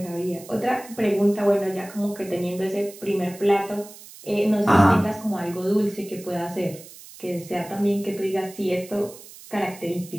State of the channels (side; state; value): right; noise; hiss, 18 dB below the sound